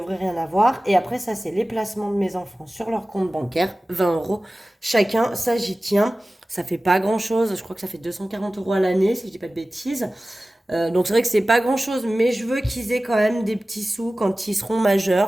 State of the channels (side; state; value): both; normal; correlation 0.96